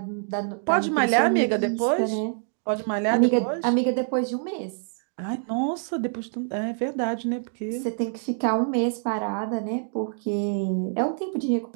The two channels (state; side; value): silent; left; digital silence